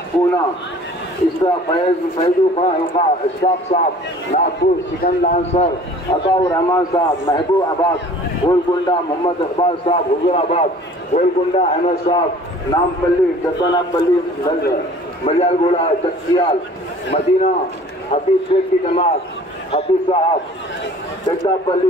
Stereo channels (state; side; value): normal; both; correlation 0.49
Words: पूना, इस तरह फैजू खां हल्का इशफाक साहब नागपुर, सिकंदर सर अताउर रहमान साहब महबूबाबाद, गोलकुंडा मोहम्मद इकबाल साहब हुजूराबाद, गोलकुंडा अहमद साहब नामपल्ली, जगन्नाथपल्ली मलियालगोड़ा चकियाल, मदीना हफीज शेख की जमात हफीज साहब, जगदापल्ली